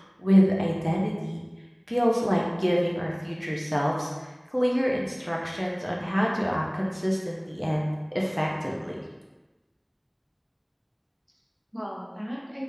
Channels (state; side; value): identical; both; correlation 1.00